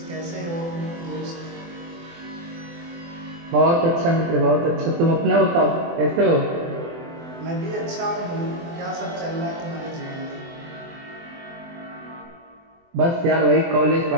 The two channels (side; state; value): left; late; 24 ms